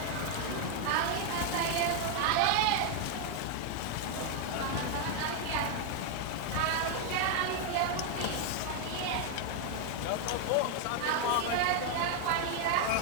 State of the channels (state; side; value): different; both; correlation 0.00